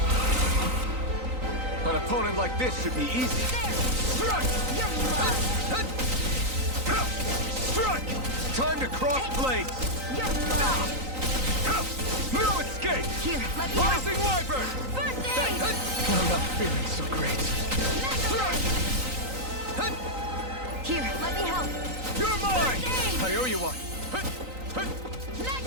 An opponent like this should be easy. Strike! You're mine! Strike! Time to cross blades! You're mine! No escape! Here, let me help! Rising Wyvern! First aid! I'm not feeling so great. Here, let me help! You're mine! First aid! I owe you one.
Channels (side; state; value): left; late; 3.9 ms